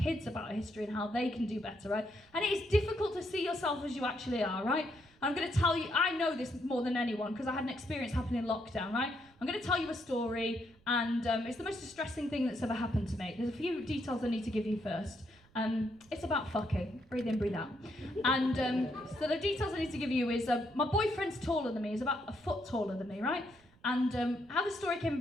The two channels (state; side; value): noise; right; rumble, 29 dB below the sound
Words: about our history and how they can do better, right? And it is difficult to see yourself as you actually are, right? I'm going to tell you, I know this more than anyone because I had an experience happen in lockdown, right? I'm going to tell you a story, and it's the most distressing thing that's ever happened to me. There's a few details I need to give you first. It's about fucking. Breathe in, breathe out. And so the details I need to give you is my boyfriend's taller than me. He's about a foot taller than me, right? And how the story came